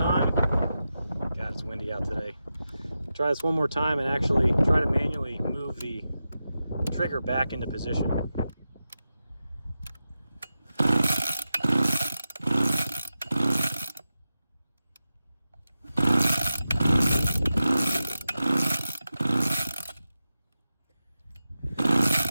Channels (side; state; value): both; inverted; correlation -0.91